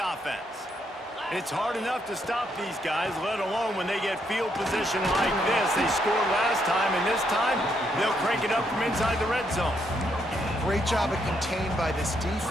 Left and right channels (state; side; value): normal; both; correlation 0.76